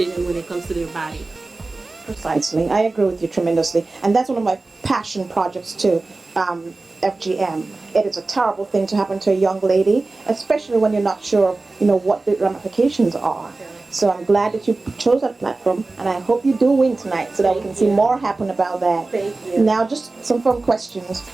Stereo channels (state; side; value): quieter; left; 3.4 dB